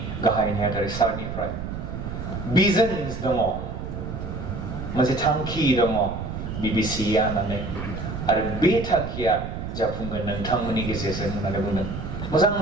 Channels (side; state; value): right; noise; rumble, 6 dB below the sound